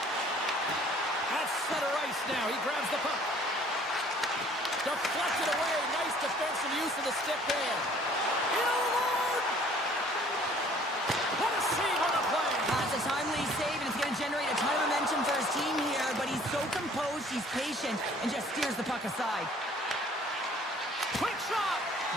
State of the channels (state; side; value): normal; both; correlation 0.55